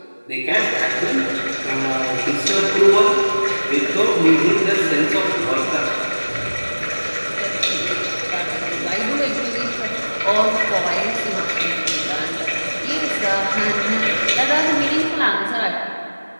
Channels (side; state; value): both; inverted; correlation -1.00